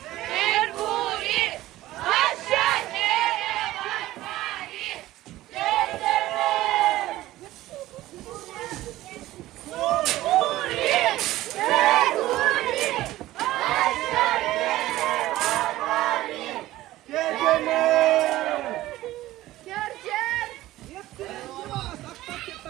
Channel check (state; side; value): quieter; left; 16.0 dB